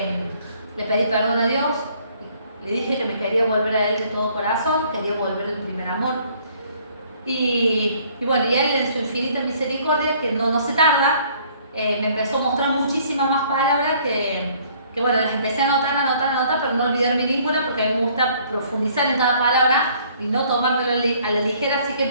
pedí perdón a Dios, le dije que me quería volver a Él de todo corazón, quería volver al primer amor. Y bueno, y Él en su infinita misericordia, que no se tarda, me empezó a mostrar muchísimas más palabras que bueno, las empecé a anotar, pero no olvidarme ninguna, porque a mí me gusta profundizar en cada palabra y no tomármelo a la ligera, así que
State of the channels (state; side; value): inverted; both; correlation -0.60